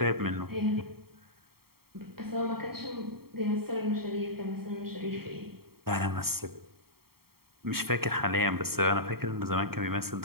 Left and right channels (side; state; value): left; late; 0.95 ms